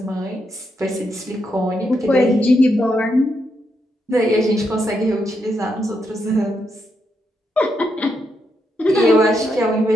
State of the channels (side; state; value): both; normal; correlation 0.81